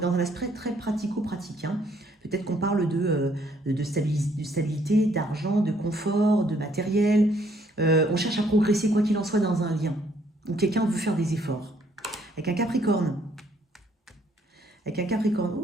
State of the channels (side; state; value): both; normal; correlation 0.66